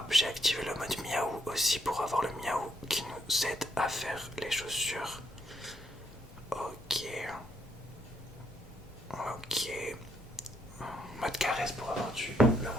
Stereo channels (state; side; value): normal; both; correlation 0.74